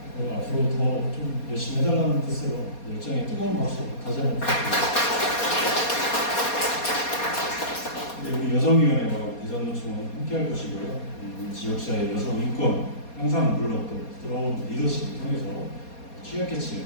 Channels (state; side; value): late; right; 4.2 ms